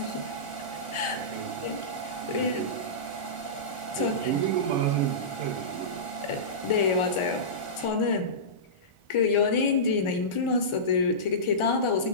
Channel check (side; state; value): right; late; 1.4 ms